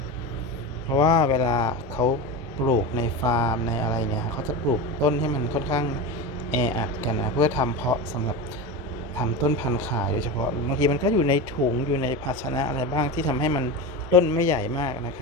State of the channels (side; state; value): both; normal; correlation 0.23